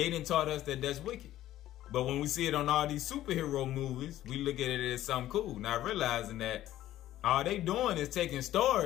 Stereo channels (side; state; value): right; quieter; 13.7 dB